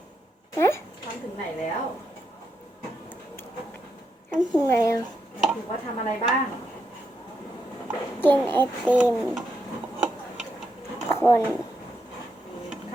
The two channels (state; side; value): normal; both; correlation 0.82